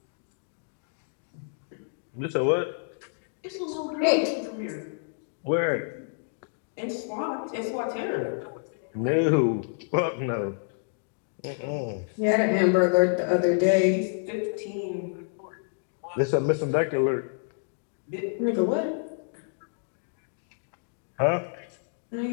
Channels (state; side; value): silent; right; digital silence